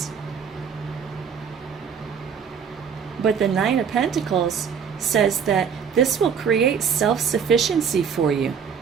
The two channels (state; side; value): quieter; left; 6.9 dB